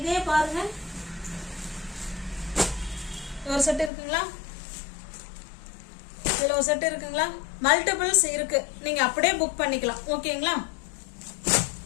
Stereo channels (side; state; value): right; drops out; at 3.9 s